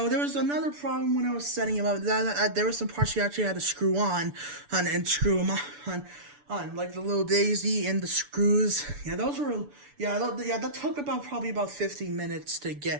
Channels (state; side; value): late; left; 6.9 ms